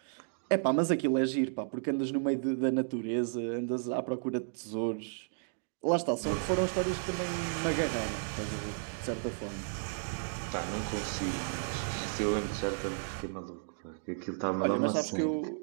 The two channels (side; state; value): left; silent; digital silence